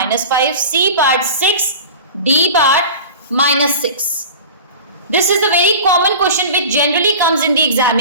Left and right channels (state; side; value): inverted; both; correlation -0.36